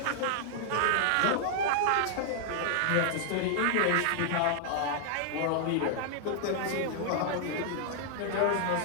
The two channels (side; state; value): both; different; correlation -0.01